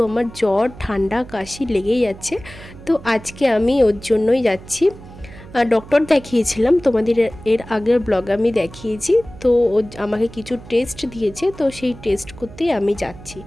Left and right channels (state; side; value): noise; right; hum, 17 dB below the sound